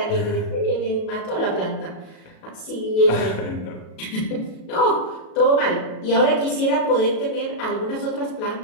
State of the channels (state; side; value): late; right; 37 ms